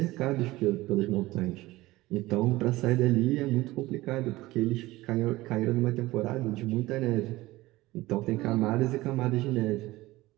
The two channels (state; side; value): quieter; left; 18.7 dB